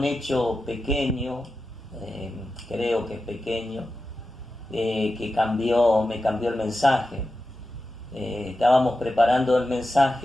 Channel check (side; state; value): both; normal; correlation 0.92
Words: hecho pequeño, creo que es pequeño, que me cambió el mensaje. Estábamos preparando el